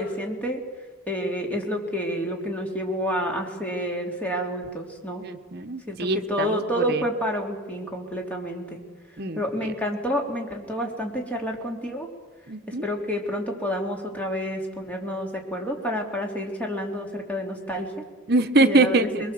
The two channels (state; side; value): normal; both; correlation 0.38